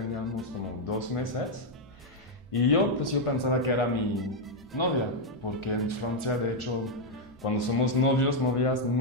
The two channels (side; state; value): both; normal; correlation 0.00